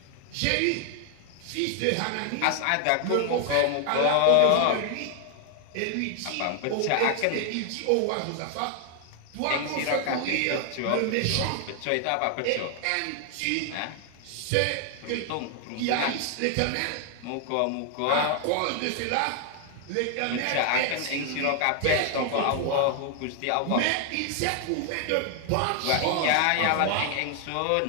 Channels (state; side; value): different; both; correlation 0.00